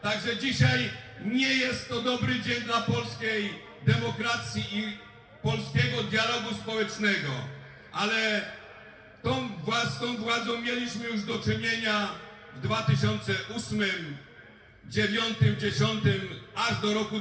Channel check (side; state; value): both; identical; correlation 1.00